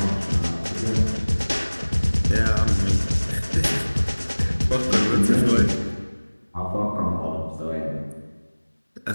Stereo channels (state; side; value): inverted; both; correlation -1.00